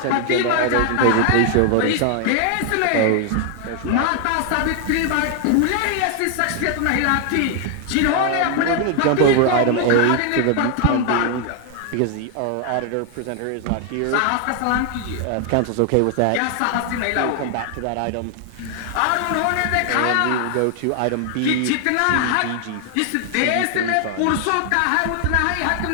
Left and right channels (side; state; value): both; different; correlation 0.00